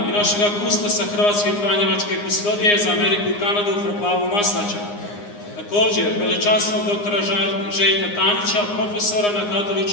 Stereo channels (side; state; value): right; late; 9.7 ms